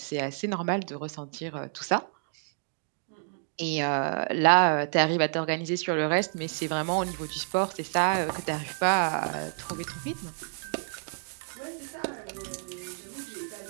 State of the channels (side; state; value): left; silent; digital silence